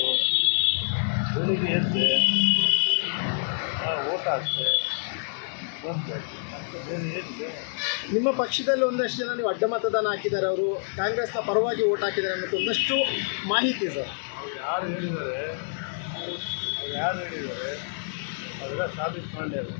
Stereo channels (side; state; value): right; silent; digital silence